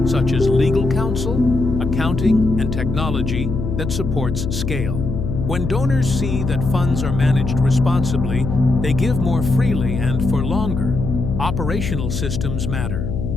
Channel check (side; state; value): left; noise; hum, 4 dB below the sound